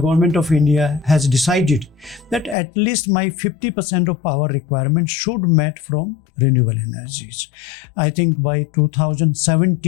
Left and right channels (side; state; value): right; drops out; at 2.6 s